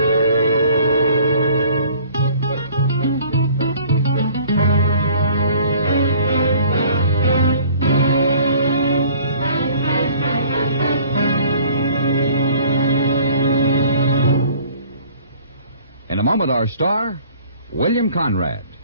a moment, our star, William Conrad.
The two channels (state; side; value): inverted; both; correlation -0.53